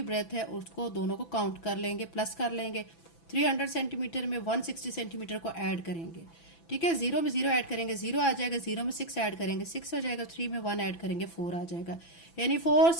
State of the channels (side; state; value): right; late; 6.0 ms